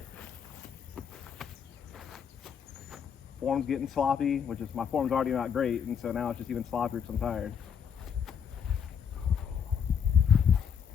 Form's getting sloppy, which is, my form's already not great, and so now it's just even sloppier because I'm tired.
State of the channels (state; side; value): quieter; right; 7.5 dB